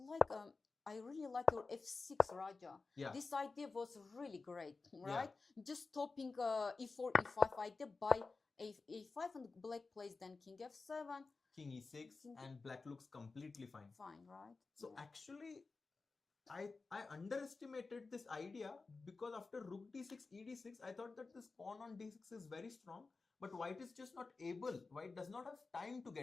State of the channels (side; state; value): right; quieter; 4.0 dB